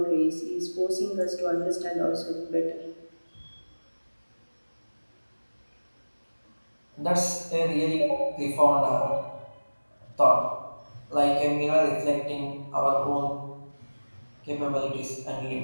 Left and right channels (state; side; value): inverted; both; correlation -1.00